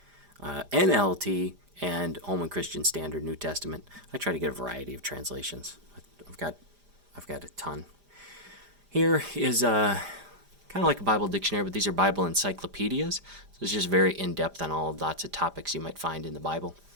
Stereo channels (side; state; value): left; late; 5.0 ms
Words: NLT, and Holman Christian Standard New Testament. I try to get a variety of translations. I've got a ton. Here is kind of like a Bible dictionary, but these are Bible encyclopedias. So it's just very in-depth on lots of topics you might find in the Bible.